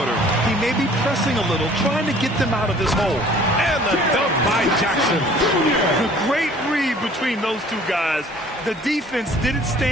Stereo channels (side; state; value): both; normal; correlation 0.52